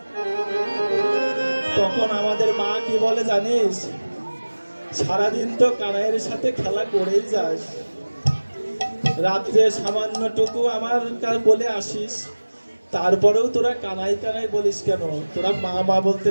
তখন আমাদের মা কি বলে জানিস, সারাদিন তো কানাইয়ের সাথে খেলা করেই যাস, রাত্রে সামান্যটুকু আমার বলে আসিস, তারপরেও তোরা কানাই কানাই বলিস কেন, তোরা মা মা বলতে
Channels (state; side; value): inverted; both; correlation -1.00